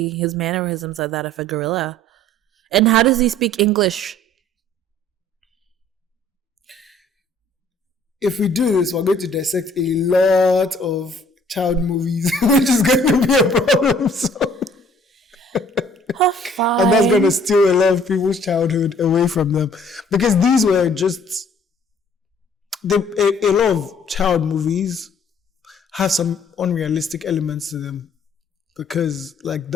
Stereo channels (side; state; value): both; normal; correlation 0.57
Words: his mannerisms are that of a gorilla. And how does he speak English? If we do this, we're going to dissect a lot of child movies, which is going to be a problem. So. And that's going to steal a lot of people's childhood away from them. Because these were just... a lot of child movies have some unrealistic elements to them. Because like